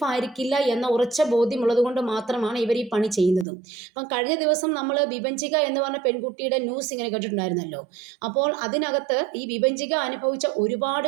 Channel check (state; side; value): drops out; left; at 3.5 s